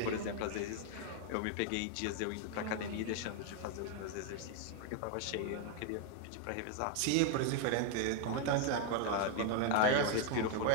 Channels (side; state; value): both; different; correlation 0.00